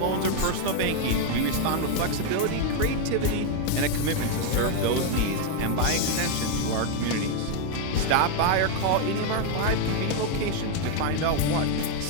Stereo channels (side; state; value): both; different; correlation 0.01